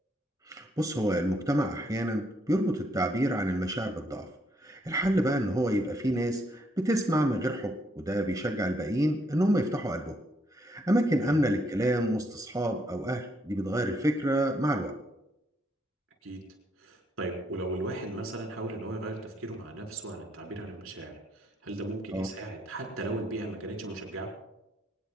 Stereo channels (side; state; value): both; normal; correlation 0.73